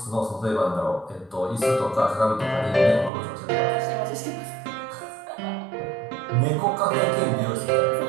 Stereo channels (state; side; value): drops out; left; at 3.1 s